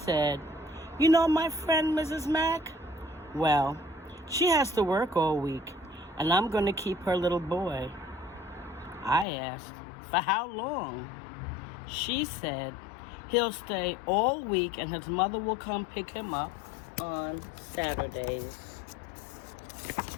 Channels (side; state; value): right; drops out; at 9.2 s